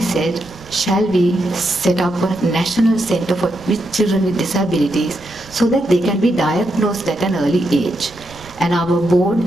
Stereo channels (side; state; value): right; noise; rumble, 22 dB below the sound